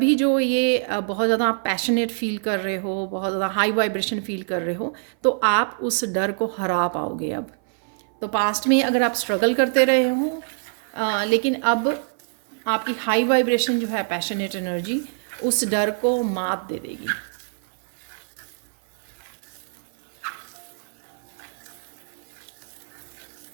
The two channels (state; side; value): silent; left; 57 dB below the other